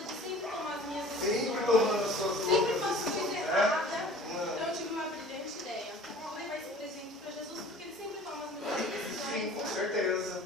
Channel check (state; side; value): normal; both; correlation 0.46